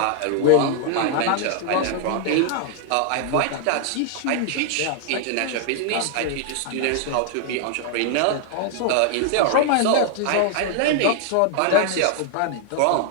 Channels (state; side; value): different; both; correlation 0.00